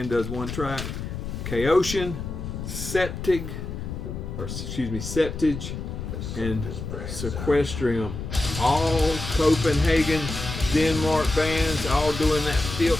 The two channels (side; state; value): left; noise; rumble, 7 dB below the sound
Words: does 1 track. Chaotian, Septige, and Sequestrium. All Copenhagen, Denmark bands, all doing that